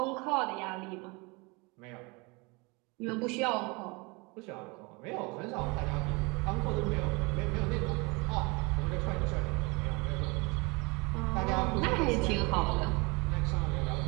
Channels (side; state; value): left; quieter; 27.6 dB